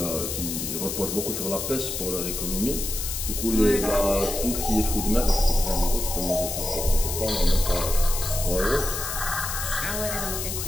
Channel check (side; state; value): left; noise; hiss, 4 dB below the sound